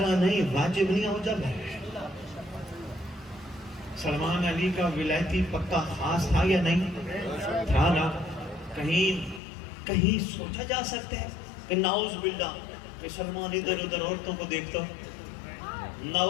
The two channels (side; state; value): right; drops out; at 9.4 s